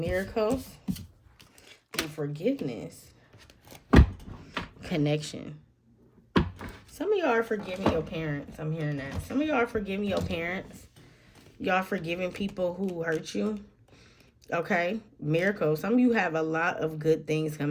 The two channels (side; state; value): both; identical; correlation 1.00